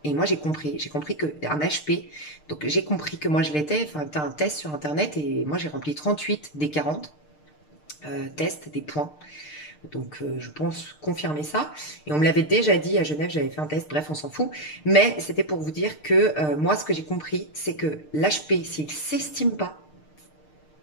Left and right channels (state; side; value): late; right; 6.6 ms